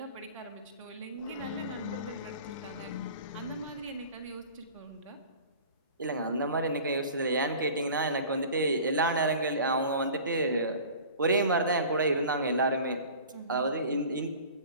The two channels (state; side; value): inverted; both; correlation -0.42